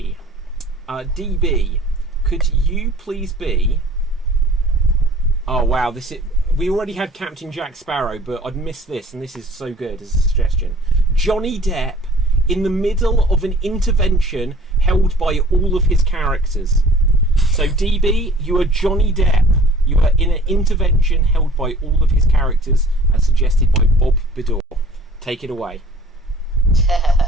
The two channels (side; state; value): both; normal; correlation 0.50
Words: DB, could you please be... Oh wow, we already had Captain Jack Sparrow, but I'd missed this, and this is so good as a suggestion. Johnny Depp in the middle of an intervention held by all of his characters. So DB, you are Johnny Depp. You are in an intervention held by all of his characters, as suggested by Bob Bidor. Take it away.